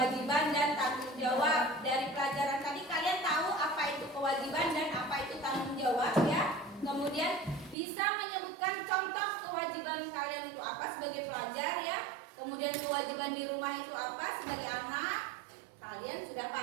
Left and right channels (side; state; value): left; drops out; at 7.8 s